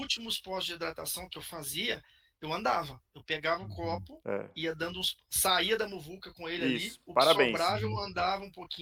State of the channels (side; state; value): both; identical; correlation 1.00